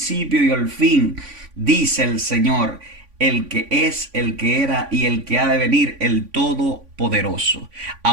y el fin, dice el Señor, el que es, el que era y el que ha de venir, el Todopoderoso.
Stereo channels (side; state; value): left; late; 3.5 ms